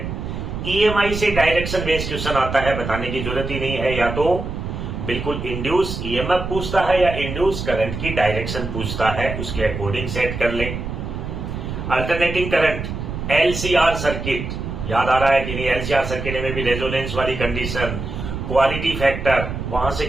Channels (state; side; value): noise; right; rumble, 6 dB below the sound